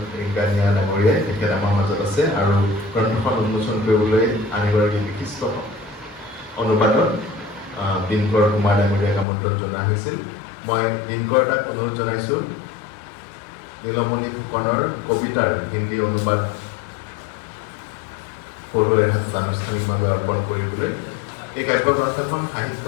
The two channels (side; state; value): right; drops out; at 9.2 s